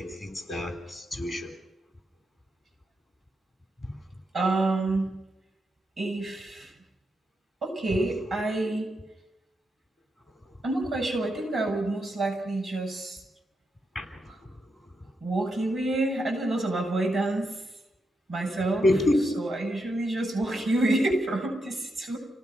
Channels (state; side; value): normal; both; correlation 0.83